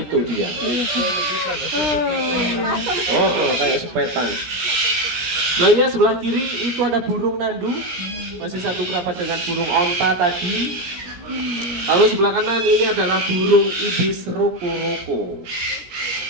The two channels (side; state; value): left; late; 17 ms